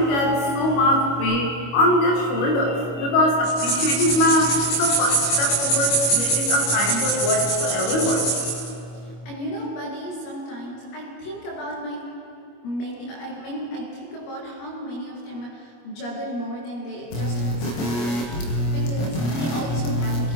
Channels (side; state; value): right; late; 25 ms